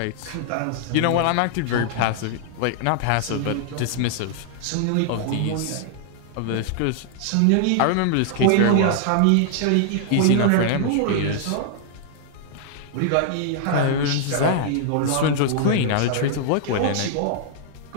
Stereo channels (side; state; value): both; different; correlation -0.01